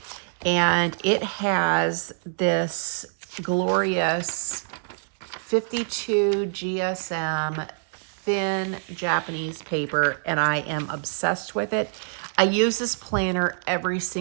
and it has this glorious 52 GSM thin Japanese paper, and I am obsessed with it. I use this planner every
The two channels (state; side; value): silent; left; digital silence